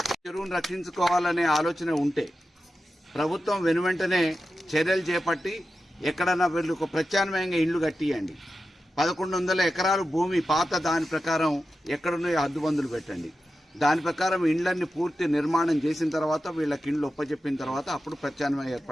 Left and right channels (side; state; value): both; normal; correlation 0.92